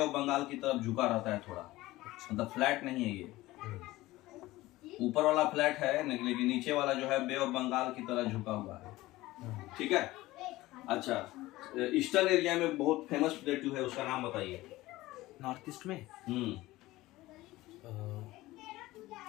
बंगाल की तरफ झुका रहता है थोड़ा, मतलब फ्लैट नहीं है ये। ऊपर वाला फ्लैट है लेकिन नीचे वाला जो है बे ऑफ बंगाल की तरह झुका हुआ है, ठीक है। अच्छा, ईस्टर्न एरिया में बहुत फेमस प्लेटू है, उसका नाम बताइए। नॉर्थ ईस्ट में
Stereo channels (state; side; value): quieter; right; 18.1 dB